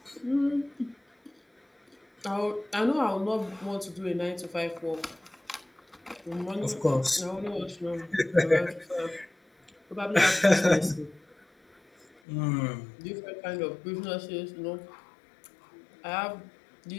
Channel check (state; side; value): drops out; right; at 12.2 s